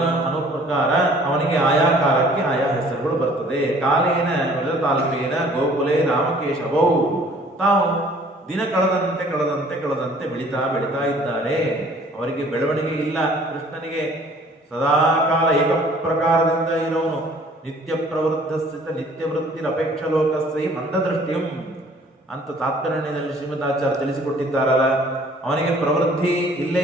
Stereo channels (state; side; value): normal; both; correlation 0.54